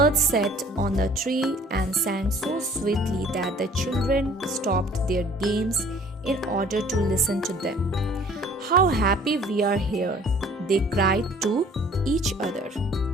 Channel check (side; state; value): both; normal; correlation 0.54